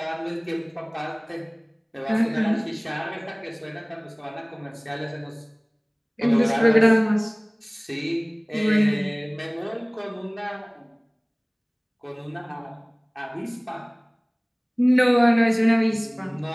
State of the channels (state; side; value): identical; both; correlation 1.00